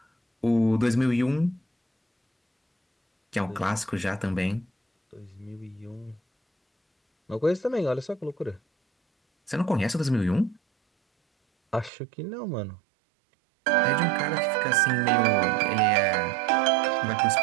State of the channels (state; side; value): drops out; left; at 11.9 s